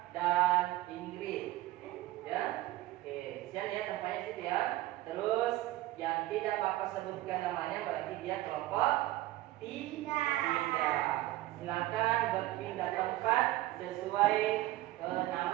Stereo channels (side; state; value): left; quieter; 16.7 dB